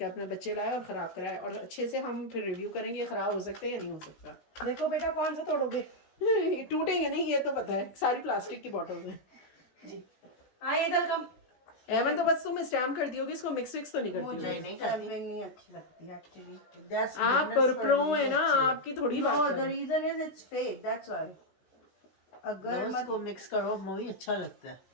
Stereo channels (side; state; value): right; late; 16 ms